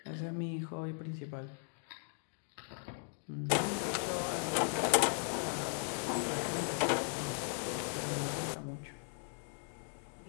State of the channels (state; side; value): silent; right; 53 dB below the other